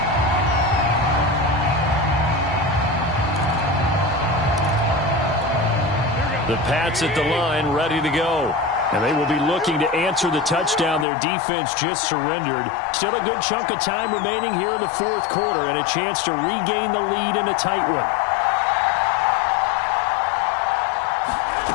The Pats at the line, ready to go. And they will be looking to answer the touchdown their defense just surrendered. Still a good chunk of time remaining here in the fourth quarter and a chance to regain the lead in a tight one.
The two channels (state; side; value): drops out; right; at 11.1 s